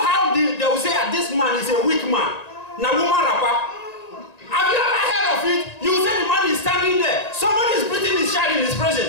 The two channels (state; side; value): late; right; 1.9 ms